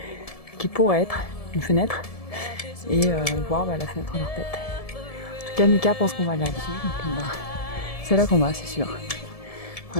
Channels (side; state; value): right; late; 1.7 ms